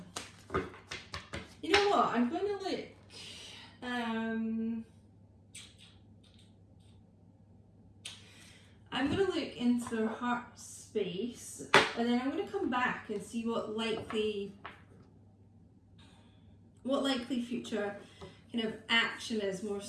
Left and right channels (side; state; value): both; identical; correlation 1.00